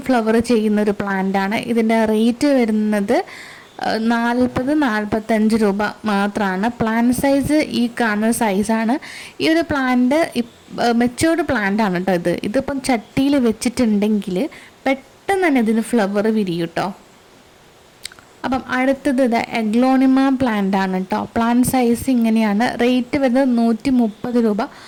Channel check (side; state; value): both; identical; correlation 1.00